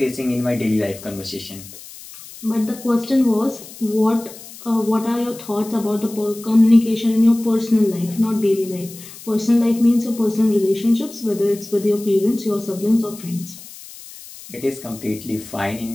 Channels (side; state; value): left; noise; hiss, 17 dB below the sound